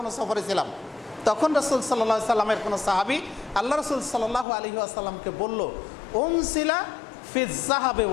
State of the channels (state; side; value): drops out; right; at 4.5 s